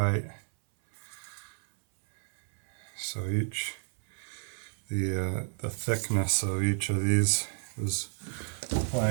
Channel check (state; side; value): silent; left; 57 dB below the other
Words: So the thickness of each of these is